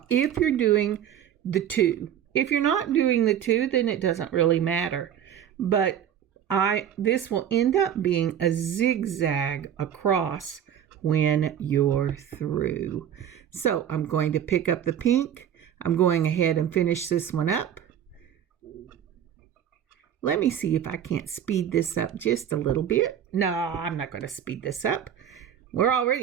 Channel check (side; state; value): left; quieter; 9.6 dB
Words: if you're doing the 2, if you're not doing the 2, then it doesn't really matter. But this will end up being a zigzag across when you're through. So I'm going to pick up the pink. I'm going ahead and finish this one up. Let me see if I can't speed this up just a little bit. No, I'm not going to speed this up. We're